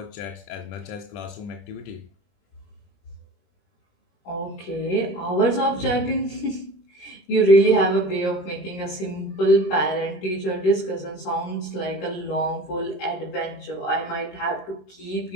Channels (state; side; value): late; right; 21 ms